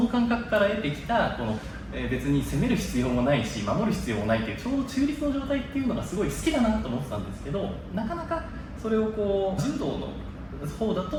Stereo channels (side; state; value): both; identical; correlation 1.00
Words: 感覚から得てきたこの別に攻める必要もないし守る必要もないっていうちょうど中立の状態っていうのがすごい好きだなと思ってたんですけど、なかなかそれを柔道の方だ